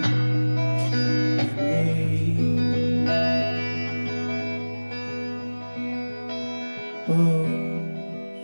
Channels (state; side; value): inverted; both; correlation -1.00